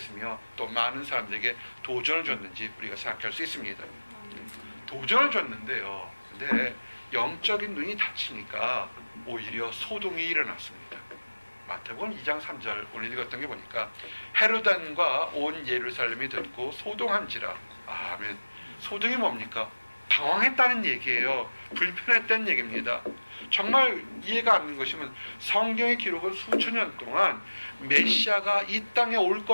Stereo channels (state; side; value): inverted; both; correlation -1.00